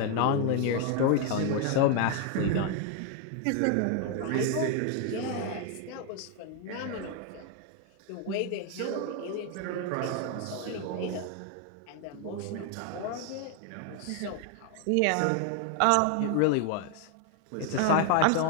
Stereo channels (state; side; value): different; both; correlation 0.01